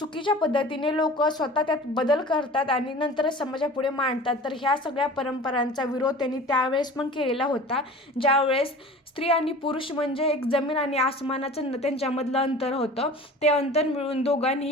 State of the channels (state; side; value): normal; both; correlation 0.40